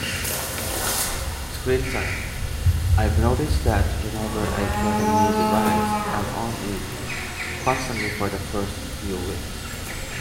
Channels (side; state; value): both; identical; correlation 1.00